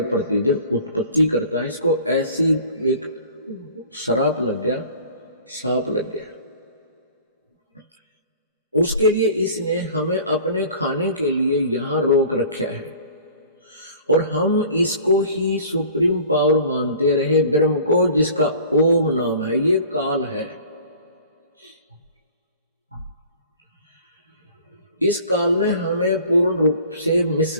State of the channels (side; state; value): both; inverted; correlation -0.47